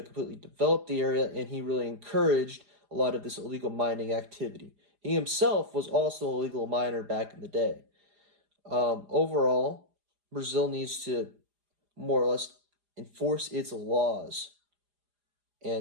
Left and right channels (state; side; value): late; left; 4.9 ms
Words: completely develop the area and he really encouraged a lot of this illegal mining activity. He himself was also a legal miner back in the day. Overall, Brazil needs to more or less enforce its laws,